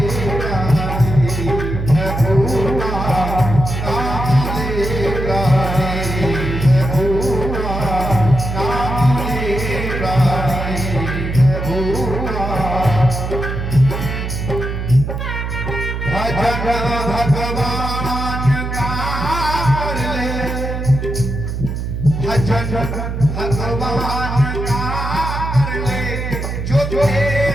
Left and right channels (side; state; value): right; noise; hum, 4 dB below the sound